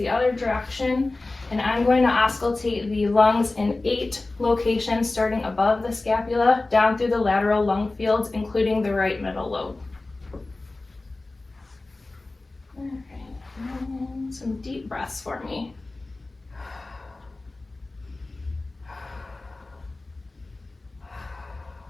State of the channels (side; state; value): right; quieter; 3.1 dB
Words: other direction. And I'm going to auscultate the lungs in 8 locations, starting above the scapula, down through the lateral lung fields, including the right middle lobe. All right, and some deep breaths for me.